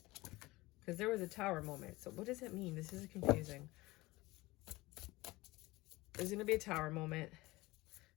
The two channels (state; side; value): quieter; right; 20.6 dB